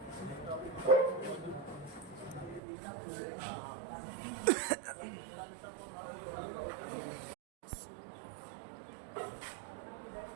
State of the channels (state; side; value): drops out; left; at 2.6 s